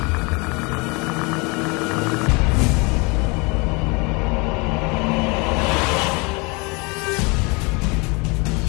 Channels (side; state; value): right; quieter; 28.8 dB